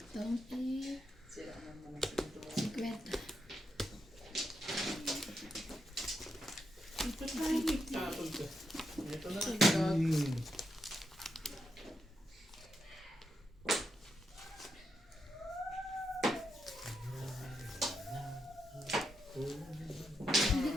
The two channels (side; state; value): both; normal; correlation 0.82